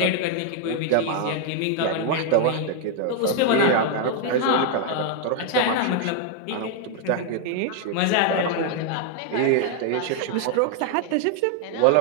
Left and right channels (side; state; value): both; different; correlation 0.00